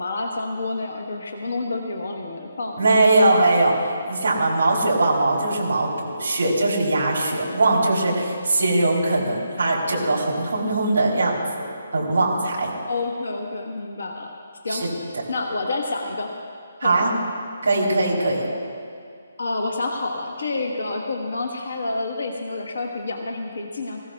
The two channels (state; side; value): inverted; both; correlation -0.82